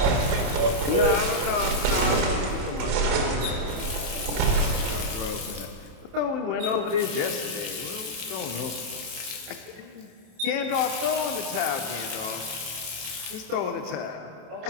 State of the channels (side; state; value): left; late; 27 ms